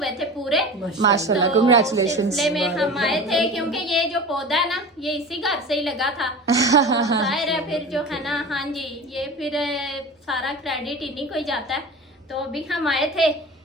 थे पूरे माशाल्लाह, तो कांग्रेचुलेशंस। सिलसिले में हम आए थे, क्योंकि ये जो पौधा है ना ये इसी घर से ही लगा था। जाहिर है फिर जो है ना, हाँ जी, ये फिर सारा क्रेडिट इन्हीं को ही जाता है। तो अभी हम आए थे,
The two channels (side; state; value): both; normal; correlation 0.34